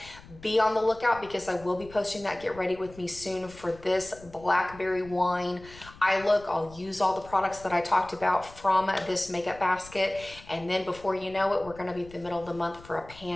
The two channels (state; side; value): noise; left; rumble, 20 dB below the sound